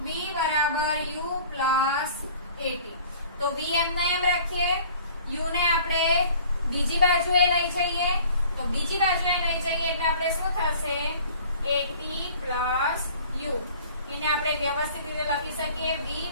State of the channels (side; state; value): both; inverted; correlation -0.49